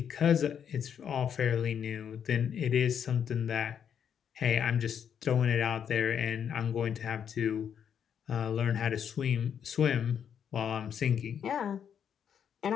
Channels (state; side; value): quieter; right; 8.2 dB